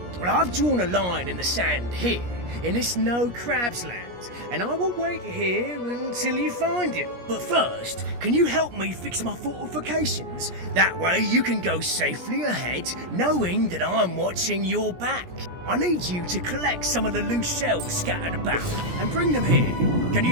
Well, I've drawn a line in the sand here, in this no crabs land, and I will wait here until you find him. But first, can you help me fix my fortifications? That way you can go safely ahead, knowing that I'm watching your back. I need you to collect some of the loose shells scattered about and bring them here. Can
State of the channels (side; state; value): left; late; 17 ms